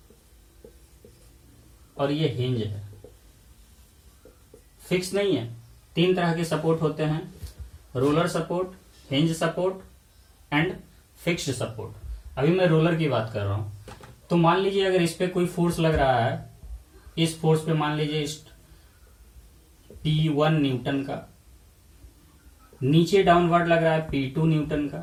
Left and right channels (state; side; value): identical; both; correlation 1.00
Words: और ये हिंज है। फिक्स नहीं है, 3 तरह के सपोर्ट होते हैं, roller support, hinge support and fixed support. अभी मैं रोलर की बात कर रहा हूं। तो मान लीजिए अगर इस पे कोई फोर्स लग रहा है, इस फोर्स पे मान लीजिए इस P1 न्यूटन का, नीचे डाउनवर्ड लग रहा है P2 न्यूटन